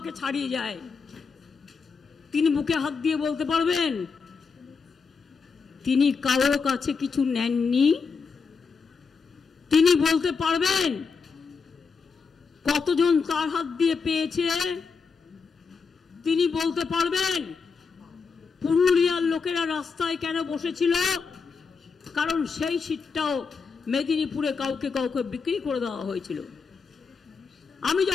ছাড়িয়ে যায়। তিনি বুকে হাত দিয়ে বলতে পারবেন তিনি কারোর কাছে কিছু নেননি? তিনি বলতে পারবেন কতজন তার হাত দিয়ে পেয়েছে? তিনি বলতে পারবেন লোকেরা রাস্তায় কেন বসেছিল? কারণ সেই সিটটাও মেদিনীপুরে কাউকে কাউকে বিক্রি করে দেওয়া হয়েছিল। আমি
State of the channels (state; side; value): quieter; right; 5.2 dB